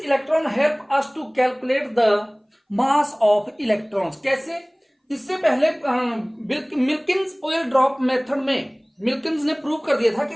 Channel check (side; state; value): both; identical; correlation 1.00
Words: help us to calculate the mass of electrons. कैसे, इससे पहले मिल्किंस ऑयल ड्रॉप मेथड में मिल्किंस ने प्रूव कर दिया था